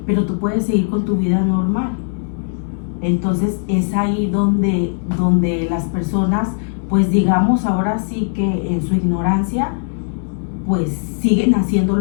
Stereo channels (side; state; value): right; silent; digital silence